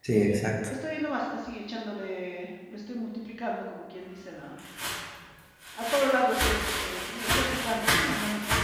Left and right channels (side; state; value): both; identical; correlation 1.00